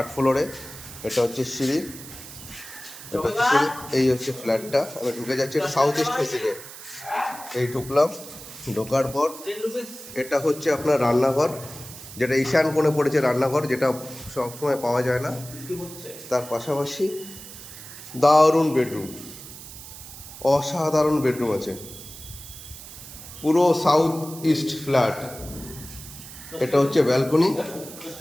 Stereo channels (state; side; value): noise; right; hiss, 14 dB below the sound